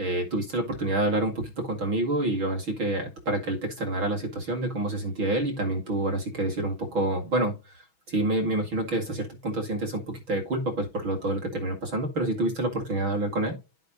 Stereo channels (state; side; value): late; left; 6.2 ms